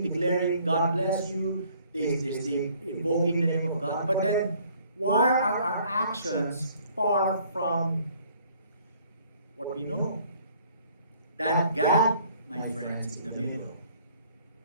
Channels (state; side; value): inverted; both; correlation -0.59